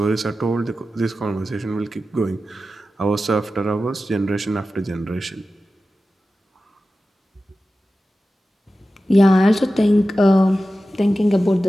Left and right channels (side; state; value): both; normal; correlation 0.94